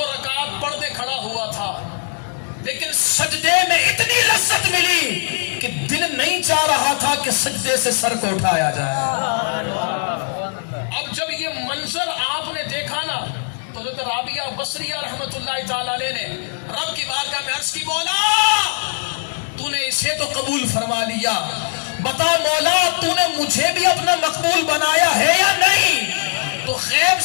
رکعت پڑھ دے کھڑا ہوا تھا، لیکن سجدے میں اتنی لذت ملی کہ دل نہیں چاہ رہا تھا کہ سجدے سے سر کو اٹھایا جائے۔ اب جب یہ منظر آپ نے دیکھا نا تو حضرت رابعہ بصریہ رحمت اللہ تعالی علیہ نے رب کی بارگاہ میں عرض کی، مولا تو نے اسے تو قبول فرما لیا، بتا مولا تو نے مجھے بھی اپنا مقبول بنایا ہے یا نہیں؟ تو غیب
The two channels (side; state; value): right; silent; 66 dB below the other